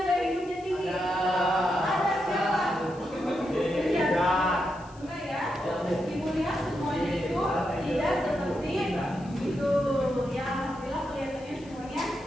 gaya hidupnya tinggi? Ada siapa? Enggak ya? Ibu lihat semuanya itu tidak seperti itu. Ya, alhamdulillah kelihatannya semuanya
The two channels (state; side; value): noise; left; hiss, 26 dB below the sound